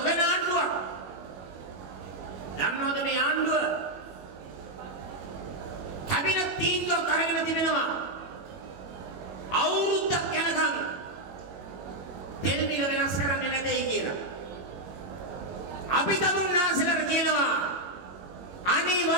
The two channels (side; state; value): left; late; 21 ms